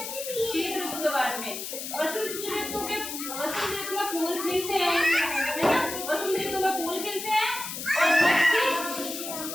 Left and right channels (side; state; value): left; noise; hiss, 7 dB below the sound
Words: शीत ऋतु के बाद में वसंत ऋतु में फूल खिलते हैं, है ना। वसंत ऋतु में फूल खिलते हैं और